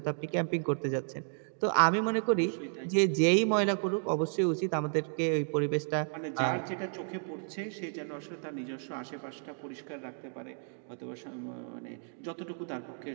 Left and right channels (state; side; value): silent; left; 56 dB below the other